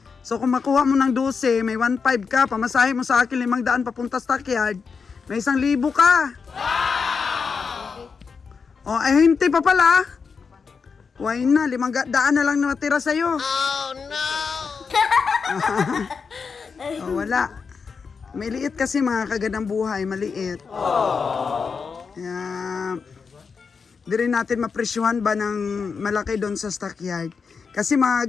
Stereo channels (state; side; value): quieter; right; 5.5 dB